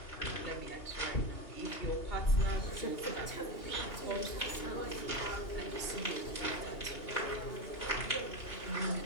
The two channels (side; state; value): right; late; 2.8 ms